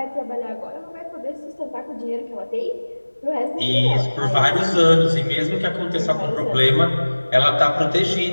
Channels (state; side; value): inverted; both; correlation -1.00